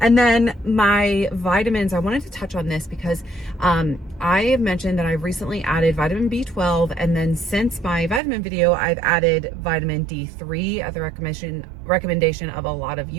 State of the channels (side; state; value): left; drops out; at 8.2 s